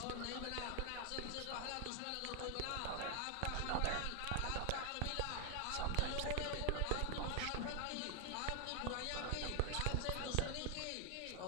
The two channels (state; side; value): different; both; correlation 0.00